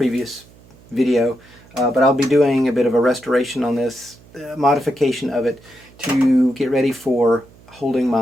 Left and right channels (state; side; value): noise; right; hum, 26 dB below the sound